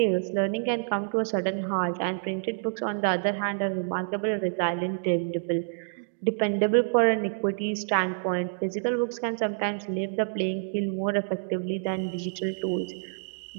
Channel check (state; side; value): silent; left; digital silence